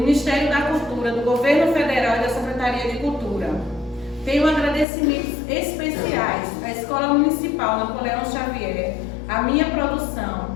da Cultura, do Governo Federal e da Secretaria de Cultura. Tenho agradecimentos especiais à Escola Municipal Napoleão Xavier, à minha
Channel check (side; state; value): right; drops out; at 4.9 s